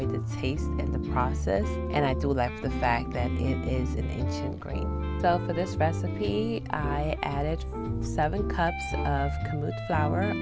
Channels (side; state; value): both; identical; correlation 1.00